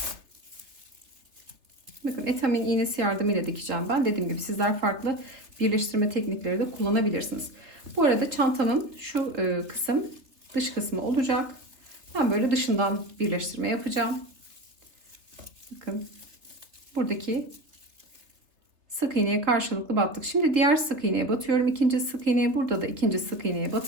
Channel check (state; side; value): late; left; 3.3 ms